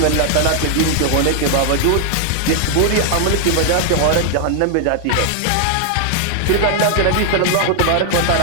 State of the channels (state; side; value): different; both; correlation 0.00